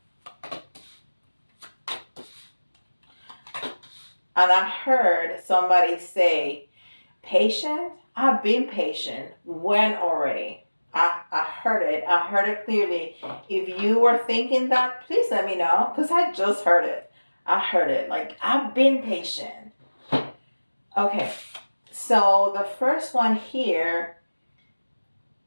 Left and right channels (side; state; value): both; inverted; correlation -1.00